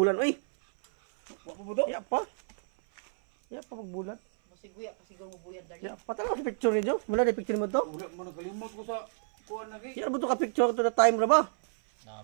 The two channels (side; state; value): left; silent; 58 dB below the other